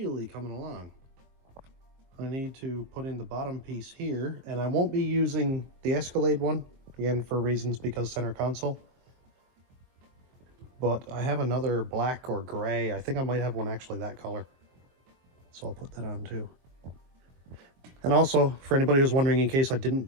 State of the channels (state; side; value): late; left; 23 ms